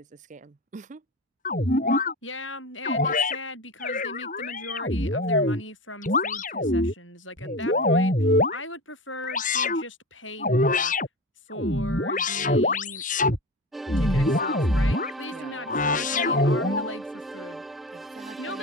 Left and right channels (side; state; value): both; normal; correlation 0.27